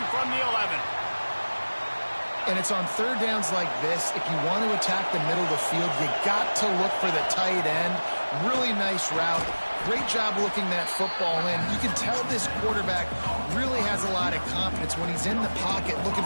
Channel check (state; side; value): inverted; both; correlation -1.00